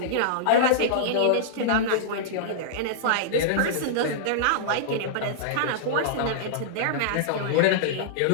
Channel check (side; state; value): both; different; correlation -0.02